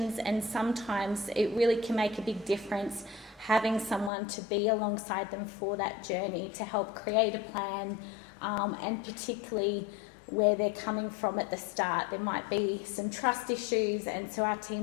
and sometimes it really can make a big difference having someone to be alongside them for that journey, to help create a plan, and particularly where they're coming from at the start. There might be some trust issues, and so our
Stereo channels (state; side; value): drops out; right; at 4.1 s